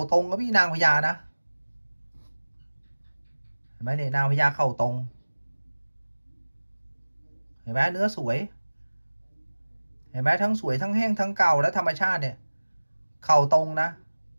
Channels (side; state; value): both; inverted; correlation -1.00